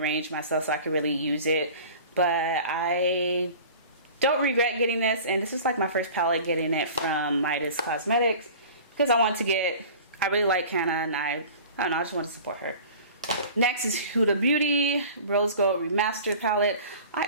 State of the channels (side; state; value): both; inverted; correlation -0.41